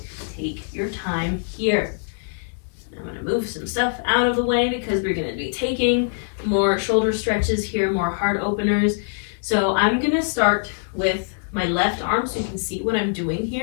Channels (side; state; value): right; silent; 60 dB below the other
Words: Take your time here. I'm going to move some stuff out of the way because we're going to be taking more shoulder stretches here, more heart openers. So I'm going to start with my left arm so you can see what I'm doing